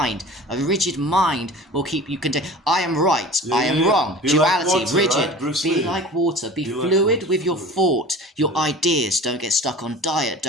A rigid mind will keep you contained. I am right, I am wrong. Be Duality, like water, rigid. right? Bruce Be Lee. like water. Be Be like fluid water, with your fluid. thought, your ideas. Don't get stuck on diet.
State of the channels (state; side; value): normal; both; correlation 0.39